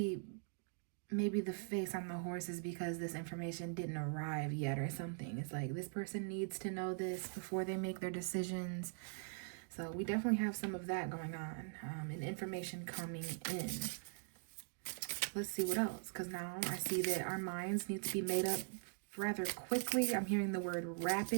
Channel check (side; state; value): left; silent; digital silence